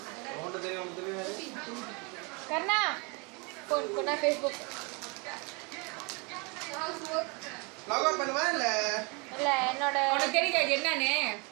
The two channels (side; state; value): left; quieter; 30.8 dB